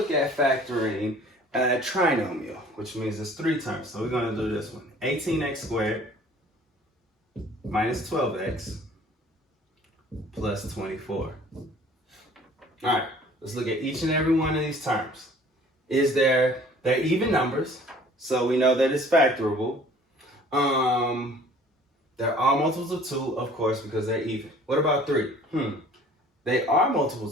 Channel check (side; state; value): both; normal; correlation 0.51